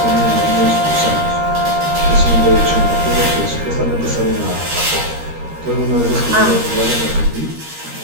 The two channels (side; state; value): left; late; 13 ms